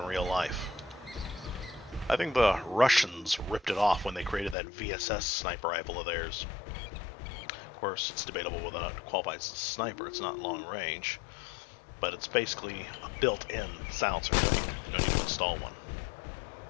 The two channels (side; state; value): right; drops out; at 4.5 s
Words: real life. I think the Russians ripped it off when they created that VSS sniper rifle of theirs. Of course, it's debatable whether or not it qualifies as a sniper. It's not long range, but it's basically a built-in silencer. No need to install one.